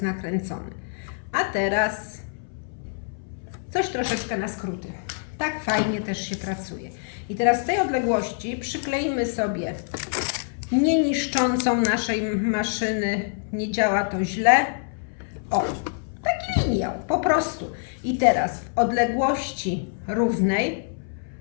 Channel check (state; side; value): silent; right; 59 dB below the other